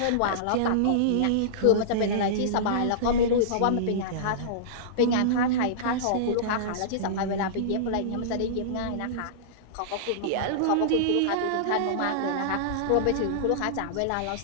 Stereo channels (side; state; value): both; different; correlation -0.03